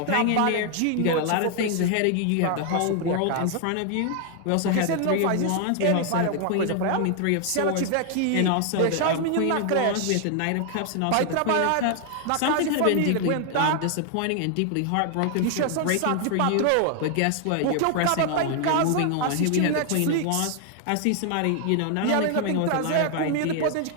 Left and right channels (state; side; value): different; both; correlation 0.00